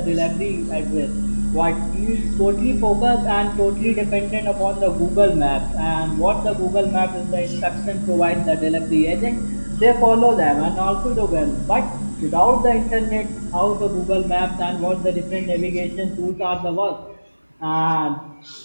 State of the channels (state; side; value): inverted; both; correlation -1.00